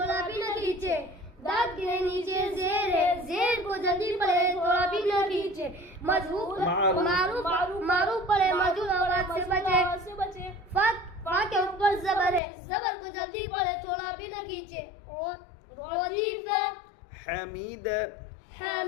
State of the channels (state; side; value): drops out; right; at 12.4 s